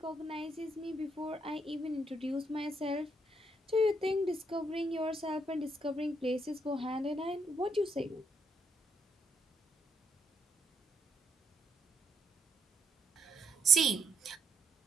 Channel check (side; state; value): both; normal; correlation 0.73